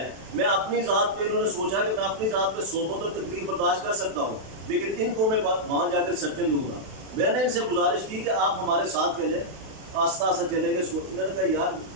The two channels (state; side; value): late; left; 32 ms